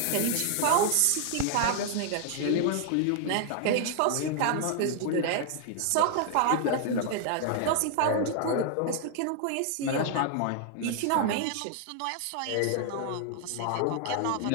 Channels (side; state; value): both; different; correlation 0.00